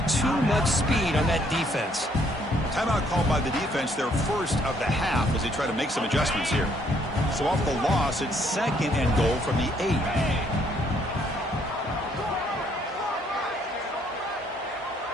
too much speed on that defense. Timeout called by the defense, their first of the half, as they try to make some adjustments here. So off the loss, it's 2nd and goal from the 8.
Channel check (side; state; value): both; normal; correlation 0.67